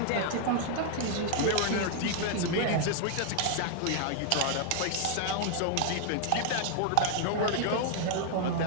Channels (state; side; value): different; both; correlation 0.00